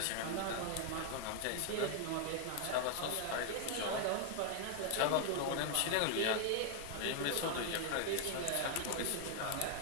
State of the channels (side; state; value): both; different; correlation 0.00